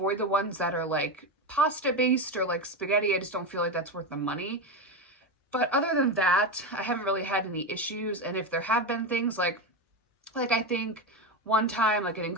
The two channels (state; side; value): normal; both; correlation 0.15